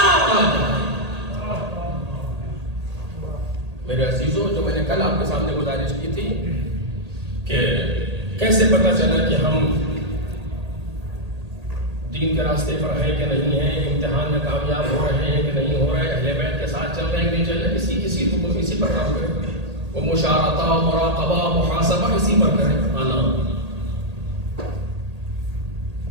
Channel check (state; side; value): late; left; 1.8 ms